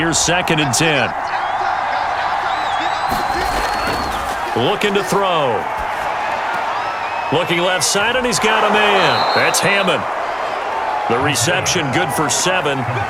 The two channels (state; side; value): identical; both; correlation 1.00